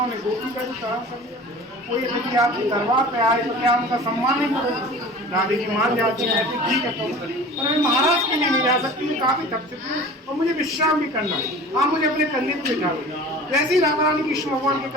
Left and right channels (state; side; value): normal; both; correlation 0.40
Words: गोपी का भी सहन कर लिया। कोई यदि आपके दरबार पे आए तो क्या उनका सम्मान नहीं करोगे? राधे जी मान जाती है, कहते ठीक है तो पर मैं महाराज के लिए नहीं जा सकती, मैं काफी थक चुकी हूँ और मुझे विश्राम भी करना है। आप मुझे अपने कंधे पे बिठा दो। वैसे ही राधा रानी कृष्ण भगवान के